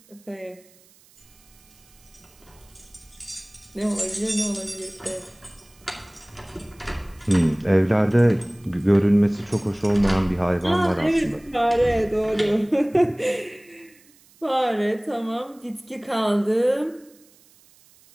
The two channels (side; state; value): right; noise; hiss, 29 dB below the sound